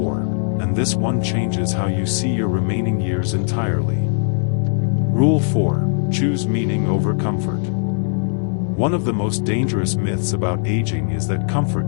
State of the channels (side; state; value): right; silent; digital silence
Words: and this one changes how you see your remaining years entirely. Rule 4, choose meaning over comfort. One of the most dangerous myths about aging is that comfort